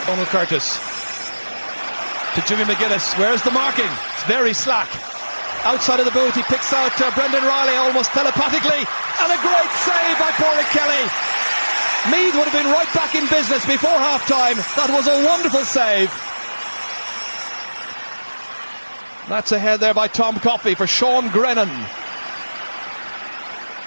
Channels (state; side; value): inverted; both; correlation -1.00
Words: Donald Curtis. To Jimmy McGuinness. Where's the marking? It's very slack. Outside of the boot, he picks out Brendan Riley almost telepathically. And a great save by Pádraig Kelly. Meath would have been right back in business before half-time. That was a wonderful save. That's ahead there by Tom Coffey for Sean Grennan.